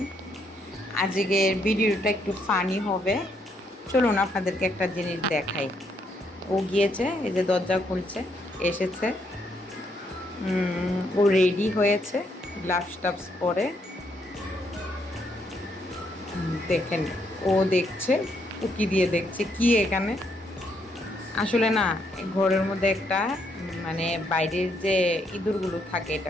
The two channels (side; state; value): both; normal; correlation 0.74